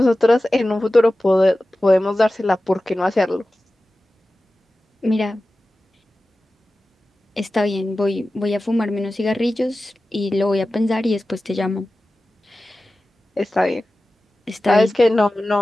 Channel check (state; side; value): normal; both; correlation 0.95